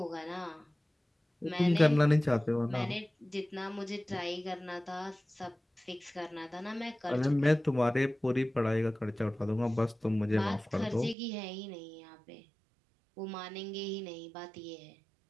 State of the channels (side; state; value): left; drops out; at 11.2 s